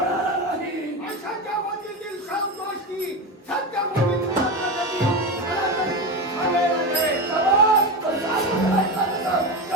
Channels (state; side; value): normal; both; correlation 0.18